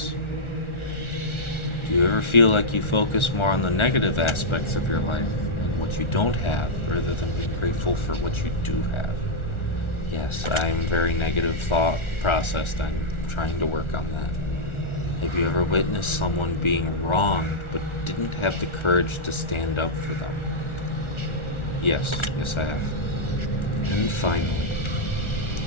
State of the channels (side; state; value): right; late; 1.4 ms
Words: Do Do you ever feel like you focus more on the negative aspects of your life and what you don't have rather than being grateful for what you do have? Yes, I am very negative thought processed. I'm trying to work on that. Have you ever witnessed someone being wronged but didn't have the courage to stand up for them? Yes, I have. And finally,